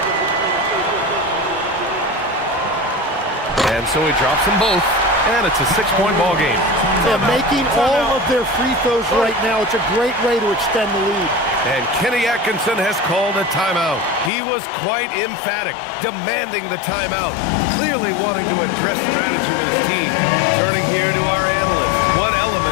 And so he drops them both, and it's a 6-point ball game. They're making all of their free throws right now. It's a great way to extend the lead. And Kenny Atkinson has called a timeout. He was quite emphatic, demanding the timeout, clearly wanting to address strategy with his team. Turning here to our analyst, what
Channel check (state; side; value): drops out; right; at 14.3 s